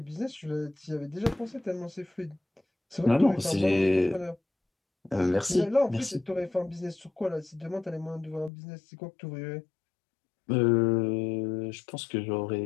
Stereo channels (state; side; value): drops out; right; at 8.5 s